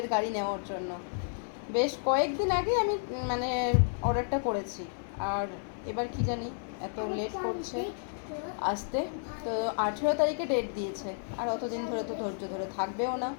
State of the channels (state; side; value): silent; right; digital silence